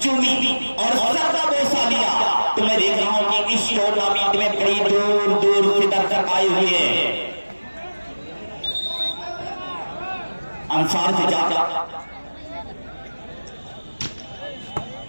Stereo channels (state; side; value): inverted; both; correlation -1.00